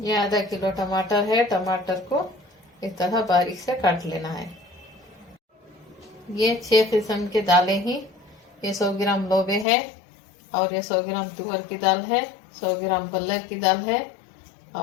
आधा किलो टमाटर है। टमाटर को इस तरह बारीक से काट लेना है। ये 6 किस्म के दालें ही। ये 100 ग्राम लोबे है और ये 100 ग्राम तुअर की दाल है, 100 ग्राम बल्लर की दाल है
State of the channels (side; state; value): right; drops out; at 9.7 s